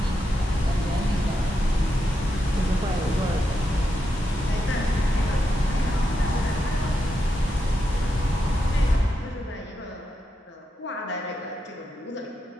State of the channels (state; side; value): normal; both; correlation 0.85